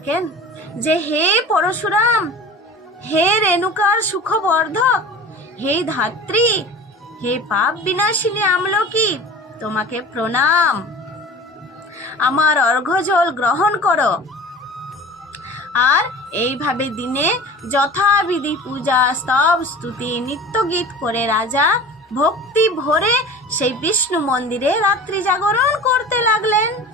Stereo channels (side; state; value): both; normal; correlation 0.39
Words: যে হে পরশুরাম, হে রেণুকার সুখবর্ধক, হে ধাত্রী, হে পাপ বিনাশিনী আমলকি, তোমাকে প্রণাম, আমার অর্ঘ্যজল গ্রহণ করো। আর এইভাবে দিনে যথাবিধি পূজা, স্তব, স্তুতি, নিত্য গীত করে রাজা ভক্তি ভরে সেই বিষ্ণু মন্দিরে রাত্রি জাগরণ করতে লাগলেন।